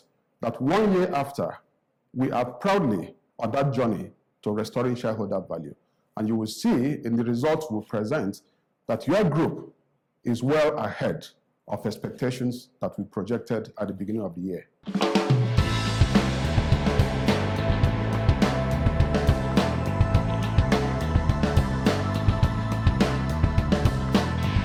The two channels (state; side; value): identical; both; correlation 1.00